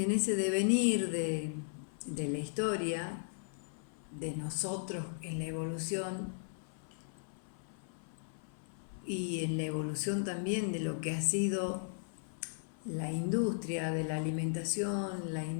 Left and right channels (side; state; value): right; silent; 53 dB below the other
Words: devenir de la historia, de nosotros en la evolución, y en la evolución también de lo que ha sido la industria de la alimentación, la